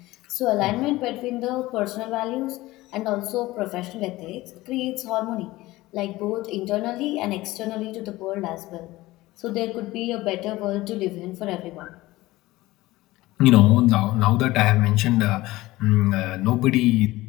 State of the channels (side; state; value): right; quieter; 18.5 dB